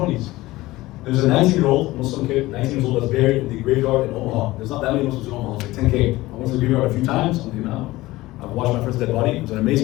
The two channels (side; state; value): right; quieter; 18.5 dB